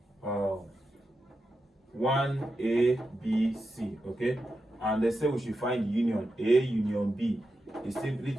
1, A, B, C, okay, and they say we should find union A union B is simply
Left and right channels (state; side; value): normal; both; correlation 0.89